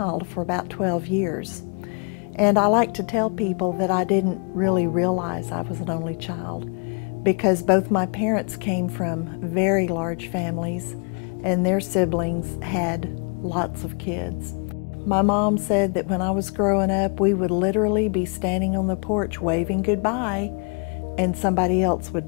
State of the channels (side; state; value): right; quieter; 38.0 dB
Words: for about 12 years. And I like to tell people that I didn't really realize I was an only child, because both my parents came from very large families and their siblings had lots of kids. My mom said that when I was growing up, we would literally be standing on the porch waving goodbye and somebody else would